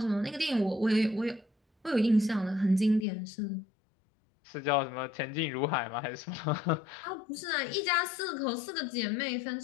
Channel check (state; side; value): drops out; right; at 3.1 s